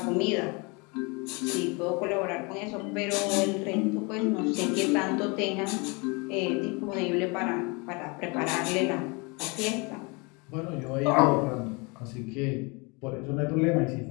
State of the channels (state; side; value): quieter; right; 29.2 dB